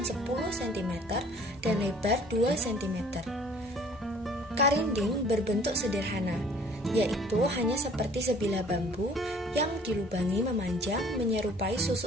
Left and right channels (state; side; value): normal; both; correlation 0.53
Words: 10 cm dan lebar 2 cm. Karinding berbentuk sederhana, yaitu hanya seperti sebilah bambu yang dilubangi memanjang menyerupai